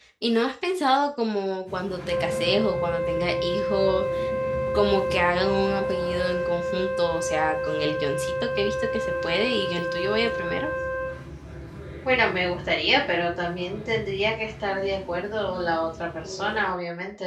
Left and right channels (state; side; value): identical; both; correlation 1.00